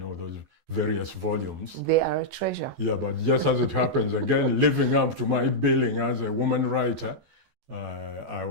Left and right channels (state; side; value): late; left; 14 ms